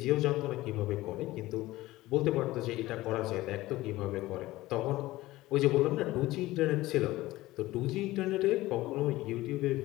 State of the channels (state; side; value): quieter; right; 17.7 dB